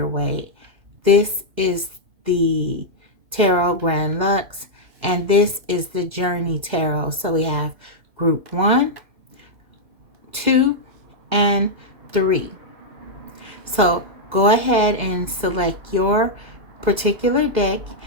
This is the Tarot Grand Lux, and this is the Journey Tarot. So we have group 1, 2, and 3. So go ahead and select your particular deck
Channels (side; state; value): left; late; 2.0 ms